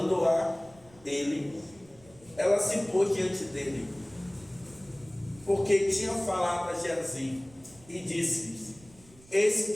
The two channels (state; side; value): noise; right; rumble, 25 dB below the sound